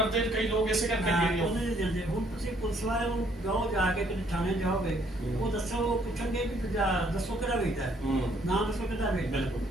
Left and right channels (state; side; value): normal; both; correlation 0.66